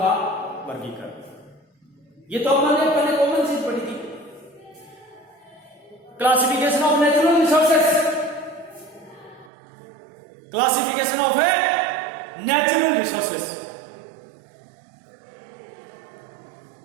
वर्गीकरण। ये तो हमने पहले कॉमन चीज पढ़ी थी, classification of natural resources, classification of a natural resources,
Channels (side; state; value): left; drops out; at 9.5 s